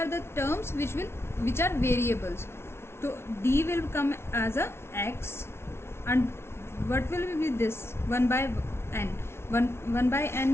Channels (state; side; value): late; right; 0.12 ms